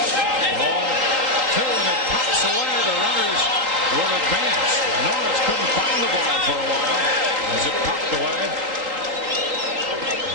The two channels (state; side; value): late; left; 3.8 ms